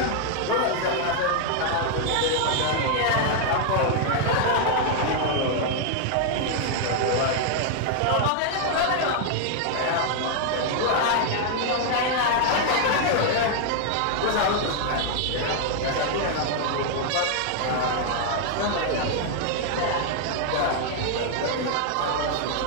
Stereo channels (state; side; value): different; both; correlation 0.00